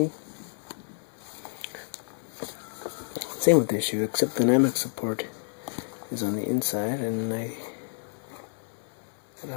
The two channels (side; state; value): right; silent; 58 dB below the other